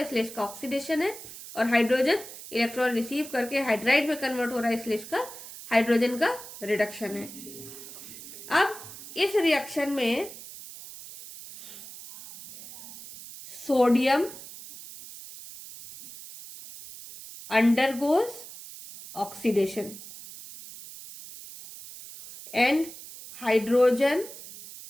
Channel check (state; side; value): noise; right; hiss, 14 dB below the sound